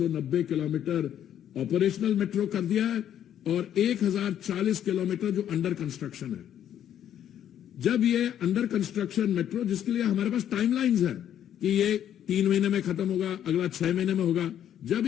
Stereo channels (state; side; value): quieter; right; 10.3 dB